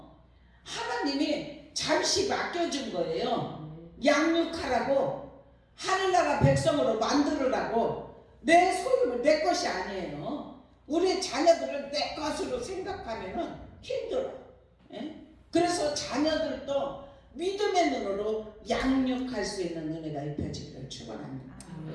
하나님이 잠시 맡겨준 거예요. 양육하라고 하늘나라 백성으로 만들으라고 내 소유를 내 것이 아니에요. 우리 자녀들을 내 것으로 생각하면은 힘들어. 예? 그래서 자녀들도 믿음의 눈으로 양육할 수 있는 은혜가 입혀지기를 축원합니다.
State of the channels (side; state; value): both; identical; correlation 1.00